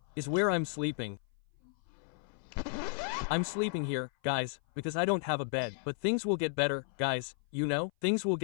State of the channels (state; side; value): silent; right; 55 dB below the other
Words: is where I'm sleeping. I'm sleeping here, guys, because I don't have a bed. But things will get better, guys, you know? Things will